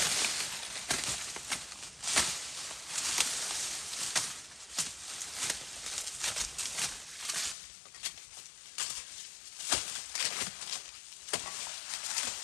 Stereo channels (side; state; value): right; drops out; at 7.6 s